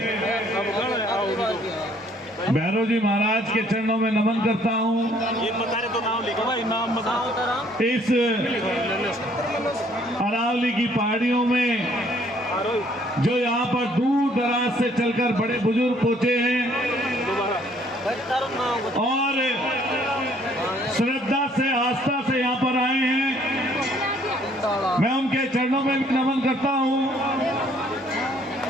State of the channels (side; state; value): both; normal; correlation 0.62